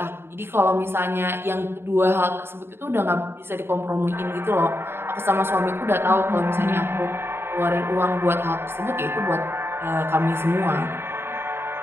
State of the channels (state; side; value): late; left; 0.11 ms